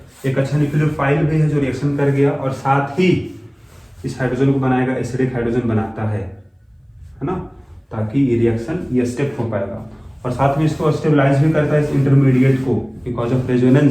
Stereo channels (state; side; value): identical; both; correlation 1.00